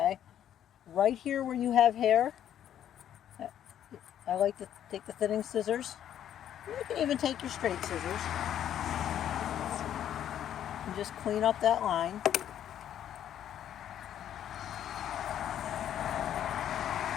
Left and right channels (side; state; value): right; quieter; 10.5 dB